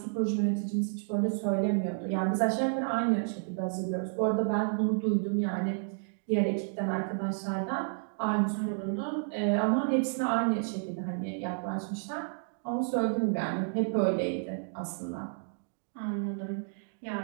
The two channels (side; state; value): left; silent; digital silence